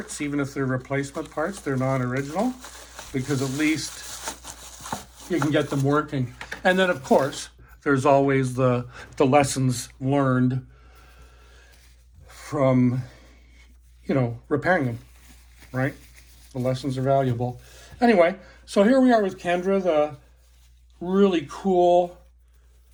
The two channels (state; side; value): identical; both; correlation 1.00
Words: even if they're replacement parts, they're non-original, because at least you can get them working. And then, of course, there's always the lessons learned from, repairing them, right? The lessons are valuable. Anyway, so here we are with Kendra, the really cool